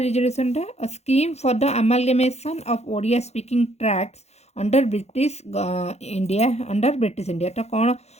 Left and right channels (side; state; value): right; late; 0.31 ms